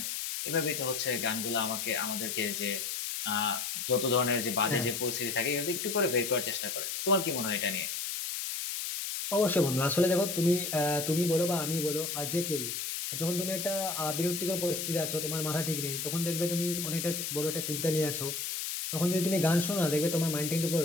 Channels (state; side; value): noise; left; hiss, 3 dB below the sound